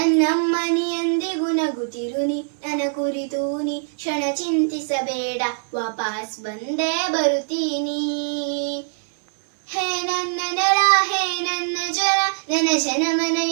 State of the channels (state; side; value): silent; left; 61 dB below the other